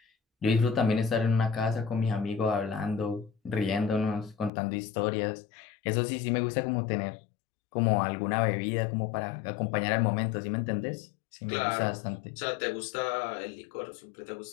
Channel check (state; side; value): drops out; right; at 4.5 s